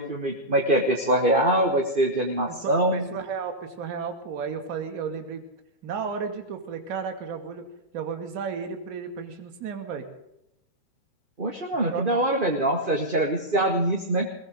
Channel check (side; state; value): left; late; 2.2 ms